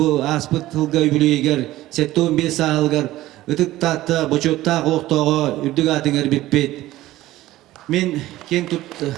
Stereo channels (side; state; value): left; quieter; 16.0 dB